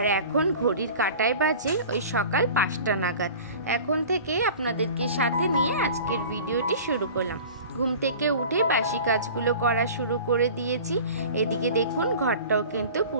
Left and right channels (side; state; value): both; inverted; correlation -0.40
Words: এখন ঘড়ির কাঁটায় বাজে ওই সকাল 5টা নাগাদ। এখন থেকে আপনাদেরকে সাথে নিয়ে আজকের ভিডিওটি শুরু করলাম। ঘুম থেকে উঠে বাসি কাজগুলো করা শুরু করে দিয়েছি। এদিকে দেখুন ঘরটাও কিন্তু